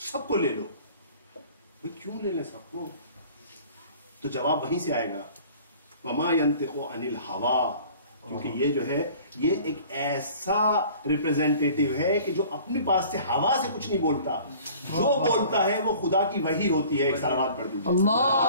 کو لے لو. کیوں لے لیں سب کو؟ تو جواب وہیں سے آئے گا وما ينطق عن الهوى. کیونکہ یہ جو ہے یہ ایک ایسا ریپریزنٹیٹیو ہے کہ جو اپنے پاس سے ہوا سے کچھ نہیں بولتا، جو بولتا ہے وہ خدا کی وحی ہوتی ہے. ایک صلوات پڑھ دیجیے.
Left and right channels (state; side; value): inverted; both; correlation -0.48